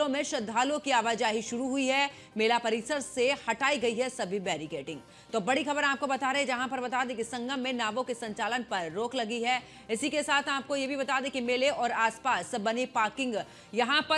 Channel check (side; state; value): both; identical; correlation 1.00